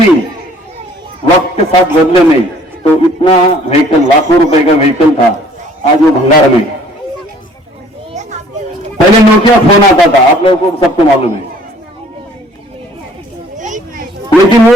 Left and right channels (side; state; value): both; normal; correlation 0.56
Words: वक्त के साथ बदले नहीं। तो इतना व्हीकल, लाखों रुपए का व्हीकल था, आज वो भंगार में। पहले नोकिया फोन आता था, आप लोगों को सबको मालूम है, लेकिन